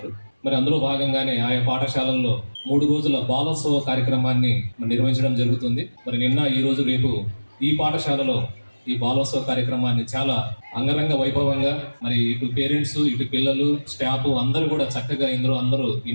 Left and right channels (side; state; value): both; inverted; correlation -1.00